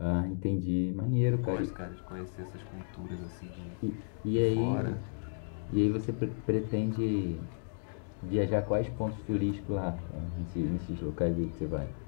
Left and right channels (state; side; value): silent; right; digital silence